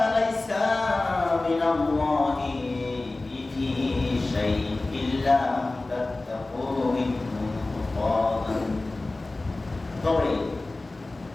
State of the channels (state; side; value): quieter; right; 3.1 dB